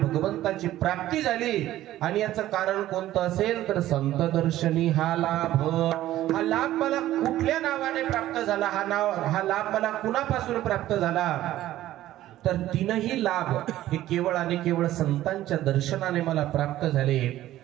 प्राप्ती झाली. आणि याचं कारण कोणतं असेल तर संत दर्शनी हा लाभ. हा लाभ मला कुठल्या नावाने प्राप्त झाला, हा लाभ मला कुणापासून प्राप्त झाला तर 3ही लाभ हे केवळ आणि केवळ संतांच्या दर्शनाने मला प्राप्त झाले.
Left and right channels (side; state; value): left; quieter; 14.2 dB